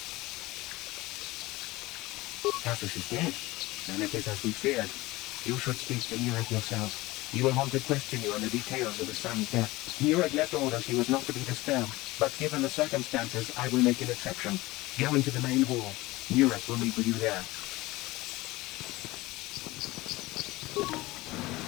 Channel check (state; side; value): quieter; right; 19.9 dB